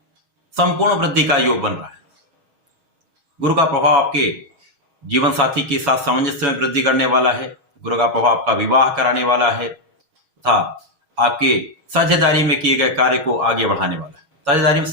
संपूर्ण वृद्धि का योग बन रहा है। गुरु का प्रभाव आपके जीवन साथी के साथ सामंजस्य में वृद्धि करने वाला है। गुरु का प्रभाव आपका विवाह कराने वाला है तथा आपके साझेदारी में किए गए कार्य को आगे बढ़ाने वाला है, साझेदारी में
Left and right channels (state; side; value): late; left; 6.3 ms